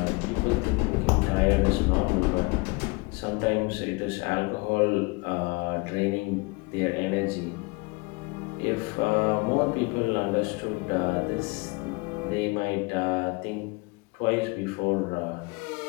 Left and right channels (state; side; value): quieter; right; 27.1 dB